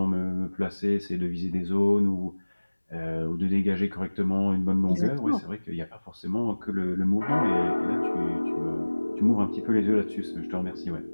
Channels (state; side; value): inverted; both; correlation -1.00